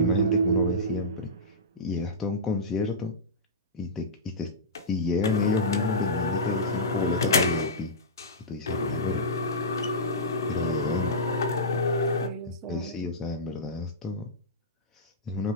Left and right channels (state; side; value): normal; both; correlation -0.16